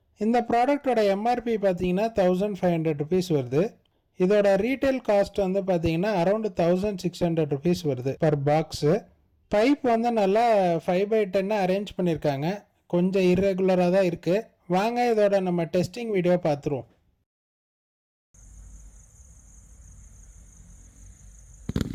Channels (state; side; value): identical; both; correlation 1.00